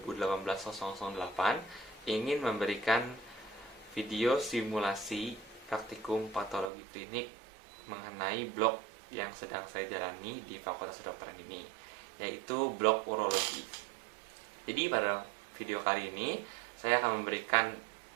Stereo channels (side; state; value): left; drops out; at 6.7 s